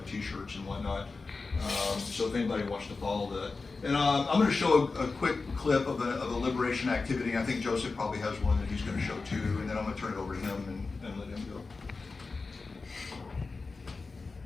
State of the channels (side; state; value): right; quieter; 4.1 dB